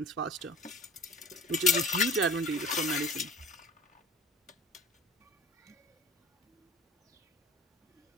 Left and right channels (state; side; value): normal; both; correlation 0.43